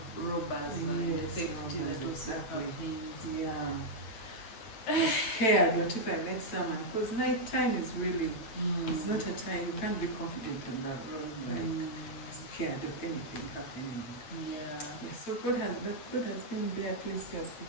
robbers and Yes, safety robbers, that also exactly. happens. Yeah. I'm scared what if I met someone, because night time is really, it's not a time, you can't be confident on that road, like scared of anything happening. Yeah, so God has been there, at least He has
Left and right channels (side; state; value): right; late; 8.9 ms